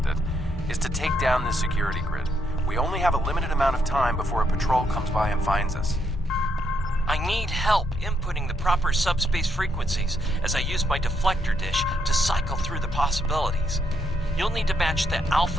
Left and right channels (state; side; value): normal; both; correlation 0.75